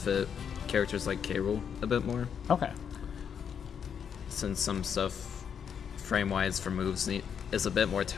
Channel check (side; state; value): right; quieter; 7.6 dB